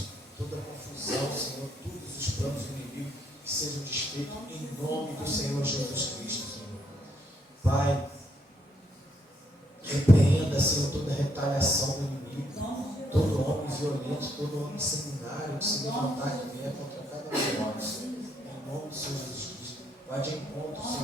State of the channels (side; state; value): both; normal; correlation 0.73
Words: toda a confusão, Senhor, todos os planos do inimigo que sejam desfeitos em nome do Senhor Jesus Cristo, Senhor. Pai, repreenda, Senhor, toda a retaliação do inimigo, todo homem violento, todo homem sanguinário que se levantar que vier contra cada um de nós, Senhor. Em nome do Senhor Jesus Cristo. Vai de encontro,